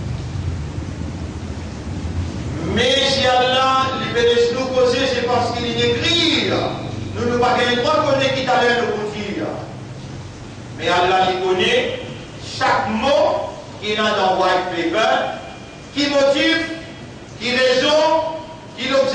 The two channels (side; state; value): both; identical; correlation 1.00